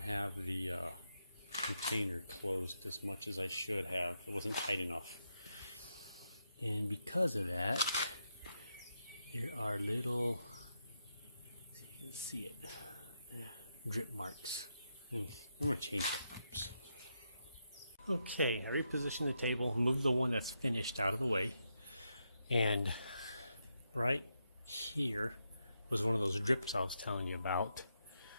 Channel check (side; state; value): both; inverted; correlation -0.82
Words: the container closed as much as I should have. It wasn't tight enough. And because of that, there are little, see if you can see it, drip marks. I'm going to change it. Oops. Okay, I repositioned the table, moved the one that's finished out of the way, and right here was one of those drips I was telling you about.